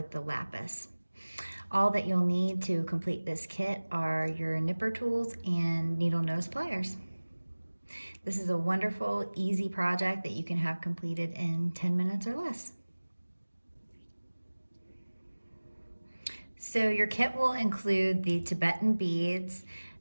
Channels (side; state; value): both; inverted; correlation -1.00